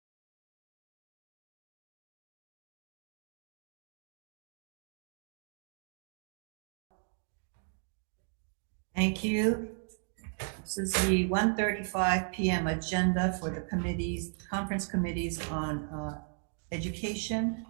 Thank you. This is the 1:35 p.m. agenda for the committees, conference committees on education.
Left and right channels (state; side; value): silent; left; 54 dB below the other